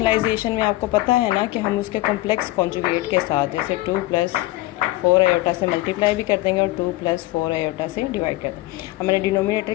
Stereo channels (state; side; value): quieter; right; 18.2 dB